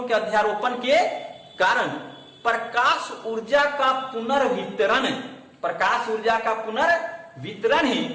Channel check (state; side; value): identical; both; correlation 1.00